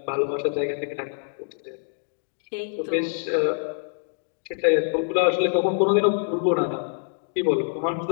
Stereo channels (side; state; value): right; silent; 60 dB below the other